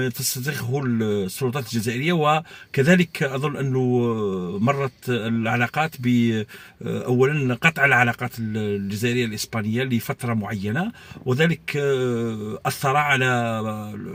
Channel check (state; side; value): identical; both; correlation 1.00